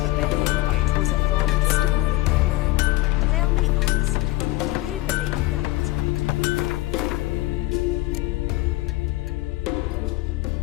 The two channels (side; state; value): right; quieter; 18.9 dB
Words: the bay. It was a falling star in my mind. Tell me honestly, do you believe that?